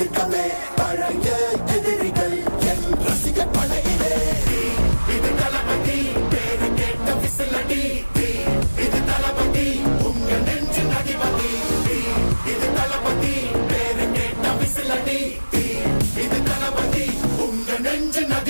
பழைய எதிரிகள் என் ரசிகர் படையிலே. இது தளபதி பேரு கேட்ட விசிலடி, இது தளபதி உங்க நெஞ்சின் அதிபதி. இது தளபதி பேரு கேட்ட விசிலடி, இது தளபதி உங்க நெஞ்சின்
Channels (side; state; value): both; inverted; correlation -1.00